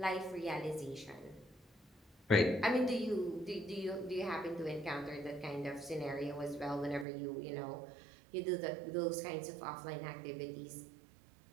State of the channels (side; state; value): left; drops out; at 7.1 s